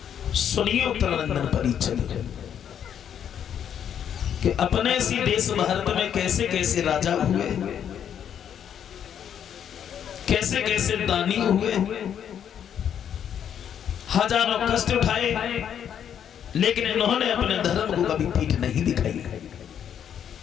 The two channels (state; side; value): quieter; right; 8.9 dB